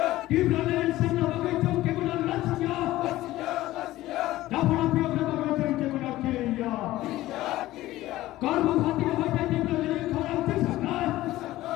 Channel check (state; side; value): quieter; right; 16.1 dB